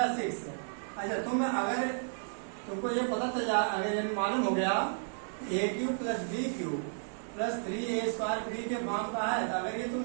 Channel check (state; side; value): silent; left; digital silence